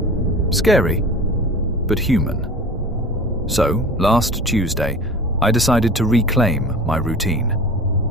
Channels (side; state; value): both; normal; correlation 0.37